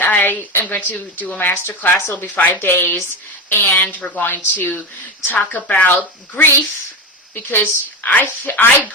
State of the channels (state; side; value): normal; both; correlation 0.19